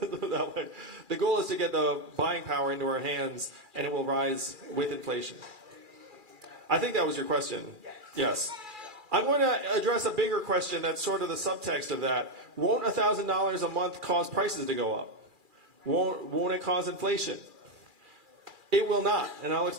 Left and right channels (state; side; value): late; left; 2.4 ms